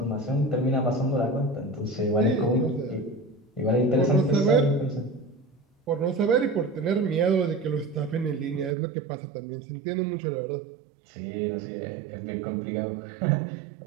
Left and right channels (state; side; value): drops out; left; at 8.8 s